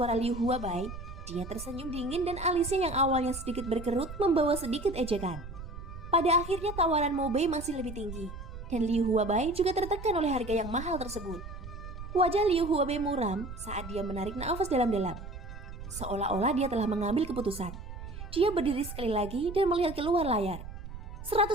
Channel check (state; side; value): noise; right; rumble, 11 dB below the sound